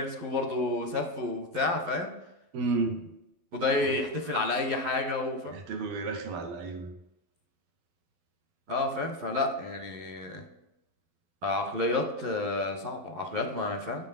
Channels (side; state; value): left; late; 12 ms